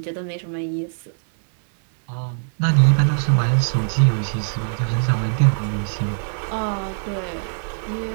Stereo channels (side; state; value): left; silent; digital silence